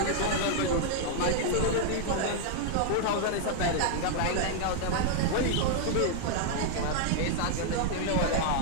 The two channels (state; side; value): different; both; correlation 0.00